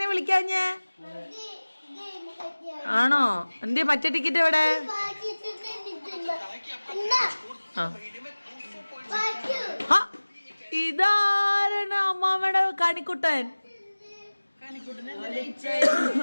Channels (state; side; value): inverted; both; correlation -1.00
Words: വിളിക്കാഞ്ഞേ? ആണോ? എന്തേ മറ്റേ ടിക്കറ്റ് എവിടെ? ഇതാരാണ്? അമ്മാമ്മയുടെ കണിക്കുട്ടൻ.